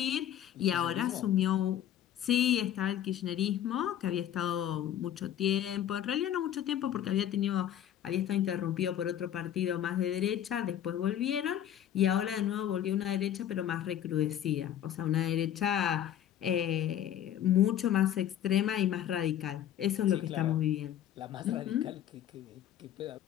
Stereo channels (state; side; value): quieter; right; 10.8 dB